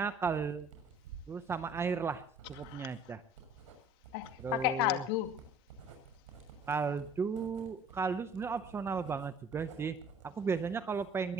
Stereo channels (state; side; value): normal; both; correlation 0.52